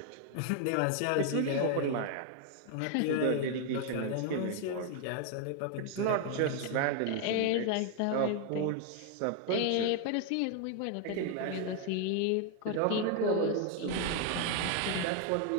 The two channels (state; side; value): different; both; correlation 0.00